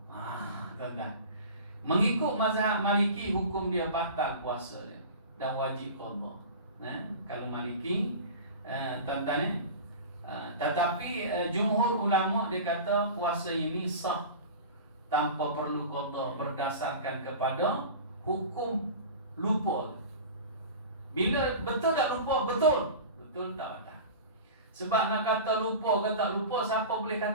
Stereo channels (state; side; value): inverted; both; correlation -0.35